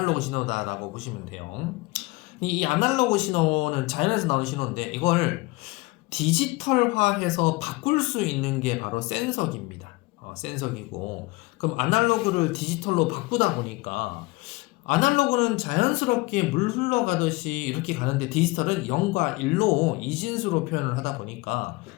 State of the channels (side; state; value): right; quieter; 23.3 dB